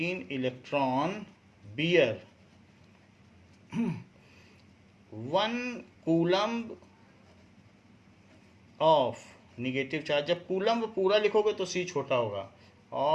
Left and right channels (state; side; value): identical; both; correlation 1.00